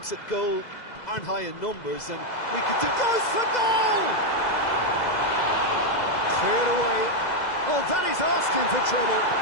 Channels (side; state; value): right; late; 2.0 ms